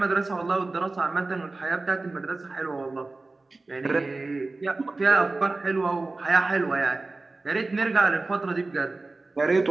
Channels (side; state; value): left; quieter; 3.3 dB